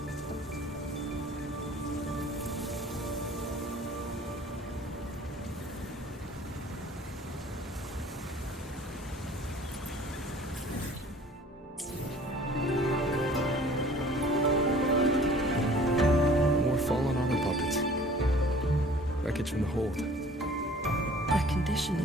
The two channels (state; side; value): normal; both; correlation 0.50